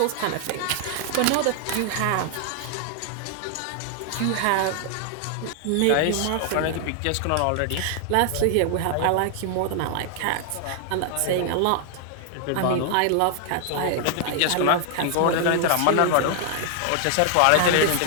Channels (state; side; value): different; both; correlation 0.00